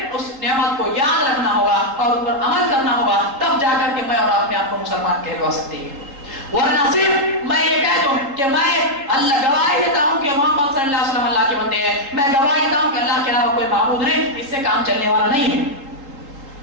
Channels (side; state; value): left; late; 3.8 ms